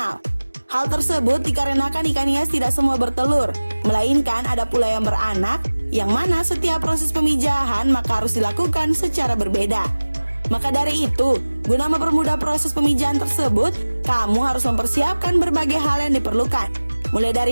Hal tersebut dikarenakan ikan hias tidak semua bertelur, melainkan ada pula yang beranak, yang mana setiap proses pemijahan maka harus dilakukan secara berbeda. Maka dari itu, guna mempermudah proses pemijahan tersebut, kamu harus mempersiapkan berbagai hal yang diperlukan, mulai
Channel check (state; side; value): inverted; both; correlation -1.00